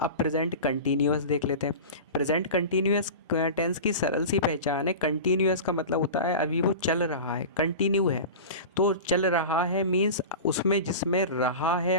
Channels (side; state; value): both; inverted; correlation -0.30